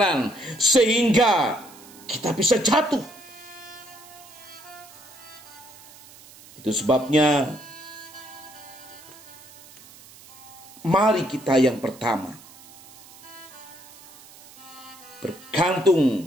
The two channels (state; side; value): noise; right; hiss, 21 dB below the sound